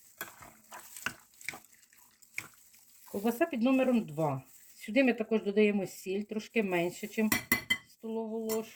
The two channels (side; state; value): both; identical; correlation 1.00